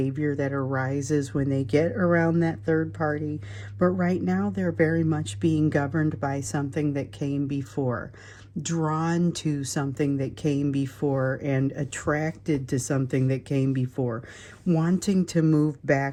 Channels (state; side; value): identical; both; correlation 1.00